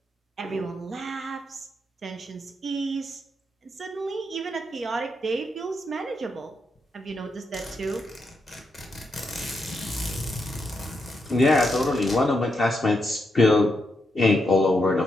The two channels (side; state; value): both; normal; correlation 0.82